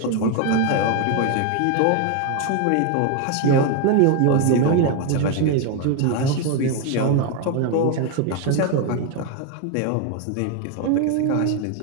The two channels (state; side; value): different; both; correlation 0.01